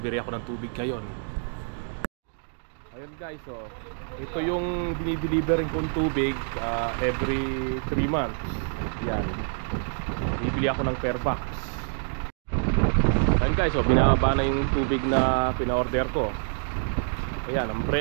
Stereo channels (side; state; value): left; silent; 60 dB below the other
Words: ako ng tubig ngayon. Ayun guys, ito yung dinidelivery kong tubig every 3 months. Yan, bibili ako ng per box. Ayun guys, binababa na yung tubig na pina-order ko. Ayan, ang